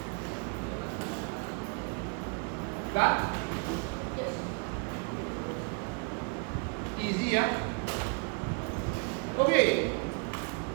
Done? Easy, yeah? Okay.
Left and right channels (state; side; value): quieter; left; 37.2 dB